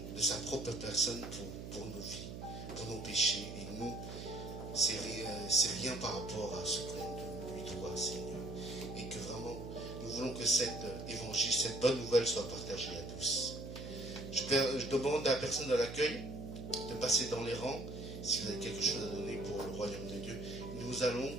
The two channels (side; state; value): right; noise; hum, 9 dB below the sound